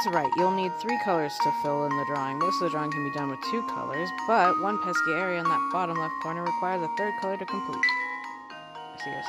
right, you'll need 3 colors to fill in the drawing. Most of the drawing can be done with 2 colors, but one pesky area in that bottom left corner requires a 3rd color to complete. I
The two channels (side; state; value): both; identical; correlation 1.00